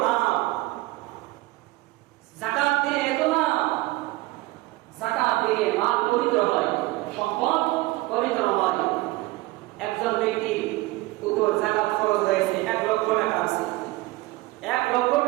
লাভ, যাকাত দিলে এত লাভ। যাকাত দিলে মাল পবিত্র হয়, সম্পদ পবিত্র হয়। একজন ব্যক্তির উপর যাকাত খরচ হয়েছে 1 লক্ষ টাকা আছে, 1 লক্ষ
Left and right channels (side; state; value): left; quieter; 20.3 dB